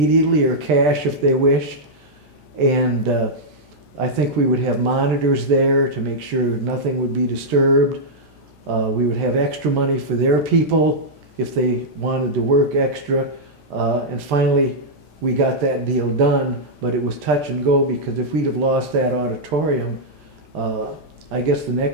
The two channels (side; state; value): left; late; 13 ms